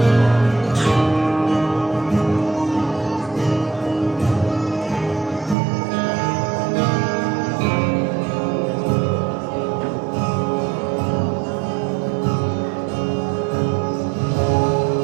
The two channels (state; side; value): drops out; left; at 5.6 s